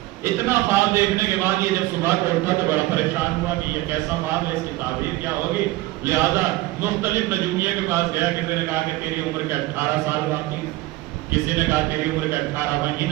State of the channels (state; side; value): quieter; left; 18.6 dB